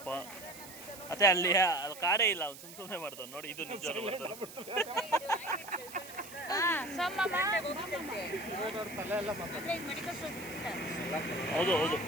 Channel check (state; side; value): noise; right; hiss, 15 dB below the sound